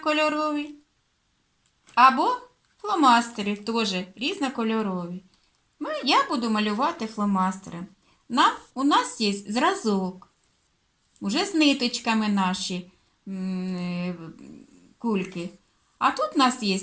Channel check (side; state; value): both; identical; correlation 1.00